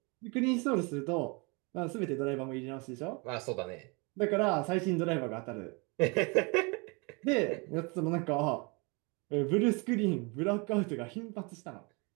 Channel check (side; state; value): left; quieter; 30.2 dB